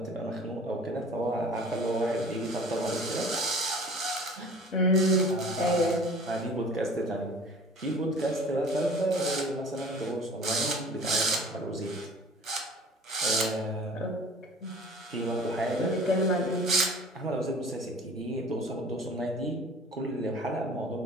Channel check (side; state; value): both; normal; correlation 0.46